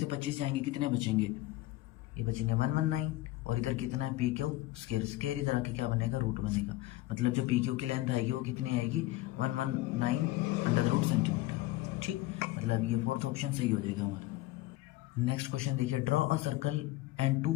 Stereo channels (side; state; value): right; quieter; 17.6 dB